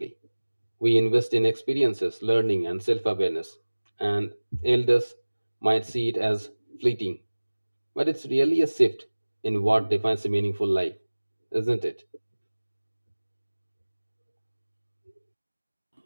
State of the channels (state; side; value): inverted; both; correlation -1.00